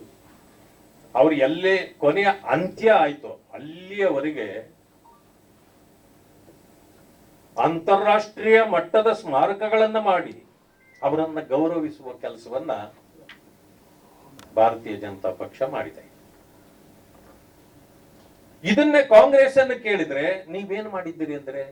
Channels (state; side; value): identical; both; correlation 1.00